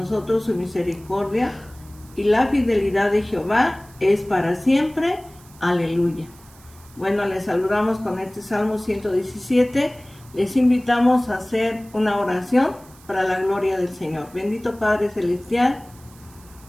su misericordia, y la fidelidad de Jehová es para siempre. Aleluya. Bueno, les saludamos con este Salmo 117. Les invitamos a hacer una oración para la gloria del Señor. Bendito Padre Celestial,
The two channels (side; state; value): right; noise; hiss, 25 dB below the sound